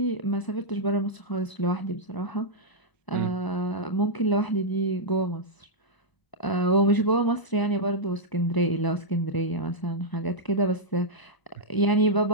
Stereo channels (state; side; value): late; right; 1.0 ms